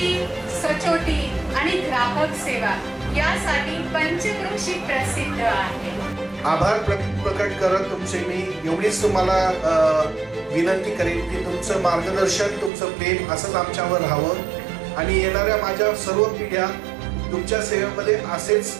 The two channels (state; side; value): drops out; left; at 12.7 s